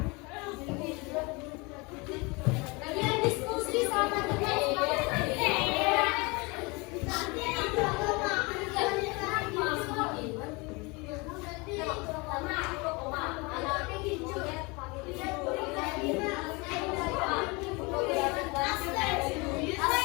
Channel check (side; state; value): right; quieter; 27.2 dB